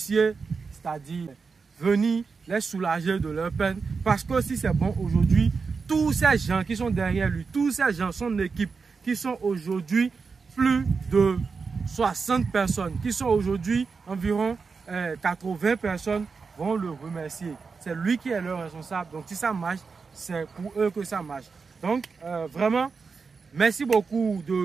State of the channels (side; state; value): left; quieter; 5.0 dB